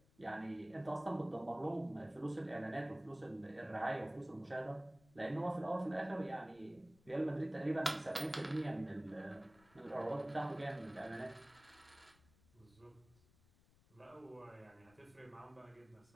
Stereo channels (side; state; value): left; noise; rumble, 28 dB below the sound